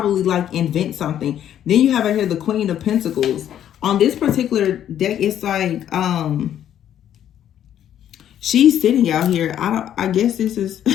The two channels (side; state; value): right; quieter; 10.5 dB